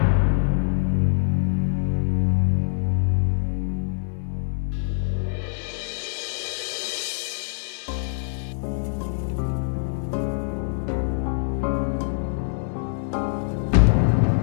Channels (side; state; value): right; silent; digital silence